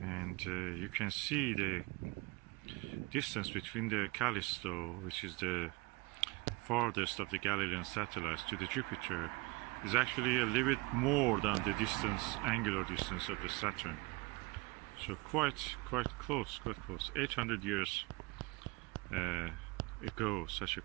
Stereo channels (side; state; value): left; quieter; 24.6 dB